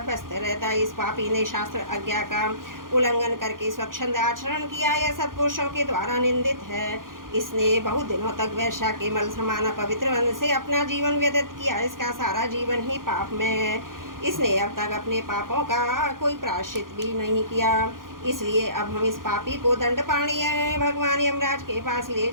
व्यस्त रहता। इस पापी ने शास्त्र आज्ञा का उल्लंघन करके स्वच्छंद आचरण किया। यह सत्पुरुषों के द्वारा निंदित है। इसने बहुत दिनों तक वैश्या के मल समान पवित्र वन से अपना जीवन व्यतीत किया। इसका सारा जीवन ही पाप में है। इसने अब तक अपने पापों का कोई प्रायश्चित भी नहीं किया। इसलिए अब हम इस पापी को दंड पाणीय भगवान यमराज के पास ले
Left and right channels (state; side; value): late; left; 0.90 ms